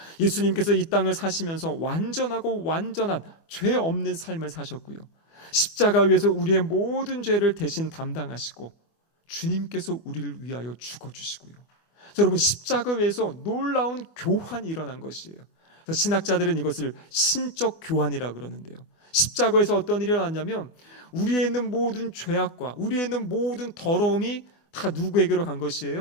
예수님께서 이 땅을 사시면서 완전하고 완전한 죄 없는 삶을 사셨고요, 십자가 위에서 우리의 모든 죄를 대신 담당하시고 주님께서 우리를 위하여 죽어주시고요. 여러분, 십자가 위에서 놀라운 교환이 일어난 것이에요. 그래서 신학자들은 이것을 신적 교환이라고 그러는데요. 십자가에서 어떤 일이 일어났냐면 우리에 있는 모든 죄악과 우리에 있는 모든 더러움이 다 누구에게로 간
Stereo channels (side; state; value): right; late; 24 ms